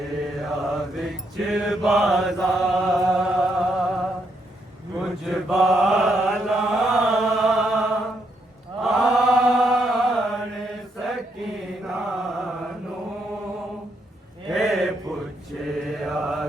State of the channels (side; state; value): both; normal; correlation 0.77